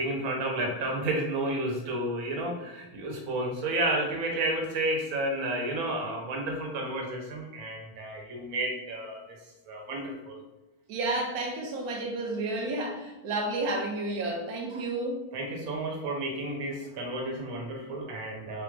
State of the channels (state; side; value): late; left; 4.4 ms